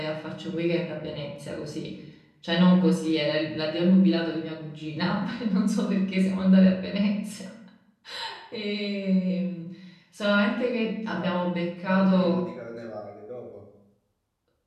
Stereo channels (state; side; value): identical; both; correlation 1.00